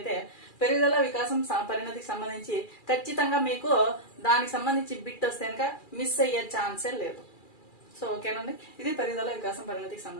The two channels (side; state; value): right; late; 2.4 ms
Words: పెరుగుదల, వికాసం, పరిణతికి సంబంధించి ఖచ్చితంగా మీకు దానికి సంబంధించి బిట్ వస్తే కనుక మిస్ అయ్యే ఛాన్సే లేదు. సో ఓకేనండి, ఇది పెరుగుదల, వికాసం, పరిణతికి